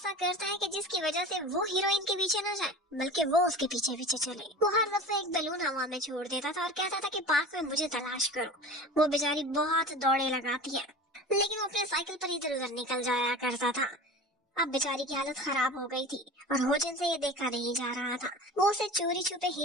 करता है कि जिसकी वजह से वो हीरोइन के पीछे न जाए बल्कि वो उसके पीछे पीछे चले। वो हर दफे एक बलून हवा में छोड़ देता था और कहता था कि पार्क में मुझे तलाश करो। वो बेचारी बहुत दौड़े लगाती है, लेकिन वो अपने साइकिल पर इधर उधर निकल जाया करता था। अब बेचारी की हालत खराब हो गई थी और होजन से ये देखा नहीं जा रहा था। वो उसे चोरी छुपे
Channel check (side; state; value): both; normal; correlation 0.35